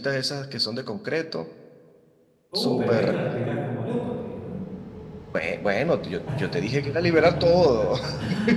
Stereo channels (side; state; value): both; identical; correlation 1.00